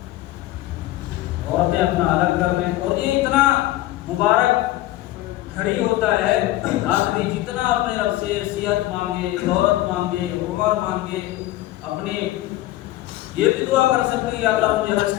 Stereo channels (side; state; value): right; quieter; 16.0 dB